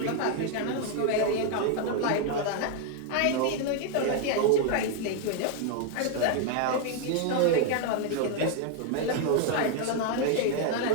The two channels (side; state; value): both; different; correlation 0.00